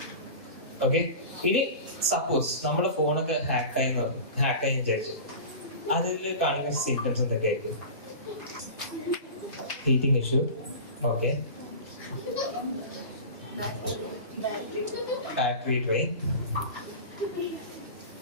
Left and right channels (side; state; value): both; inverted; correlation -0.32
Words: ഓക്കെ, ഇനി സപ്പോസ് നമ്മുടെ ഫോണൊക്കെ ഹാക്കായി വിചാരിച്ചു, അതിൽ കാണുന്ന സിംറ്റംസ് എന്തൊക്കെ ആയിരിക്കും? Heating issue, okay, battery drain,